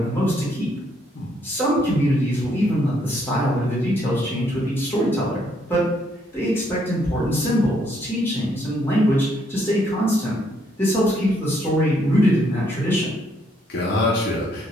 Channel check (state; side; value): normal; both; correlation 0.71